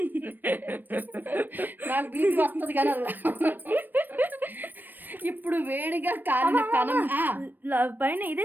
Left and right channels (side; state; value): left; late; 0.091 ms